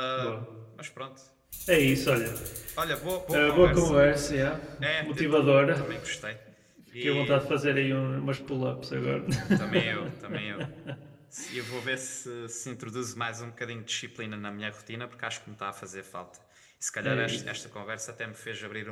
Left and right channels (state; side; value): identical; both; correlation 1.00